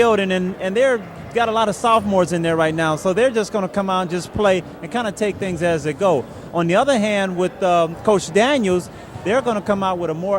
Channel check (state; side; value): identical; both; correlation 1.00